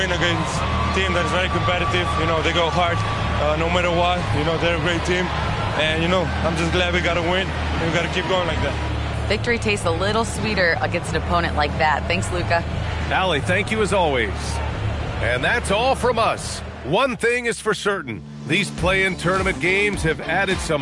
against a team that is very competitive. You know, they go hard no matter what. You know, they're a great team. And, you know, I'm just glad we got to win. And we got to keep going like that. Victory tastes a little sweeter against an opponent like that. Thanks, Luka. Allie, thank you as always. And that's all from us. One thing is for certain. These play-in tournament games have added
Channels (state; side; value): identical; both; correlation 1.00